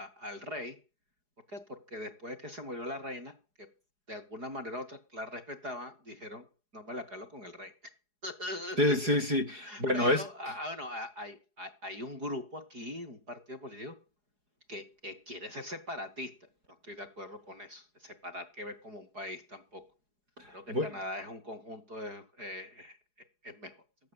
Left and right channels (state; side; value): late; left; 4.8 ms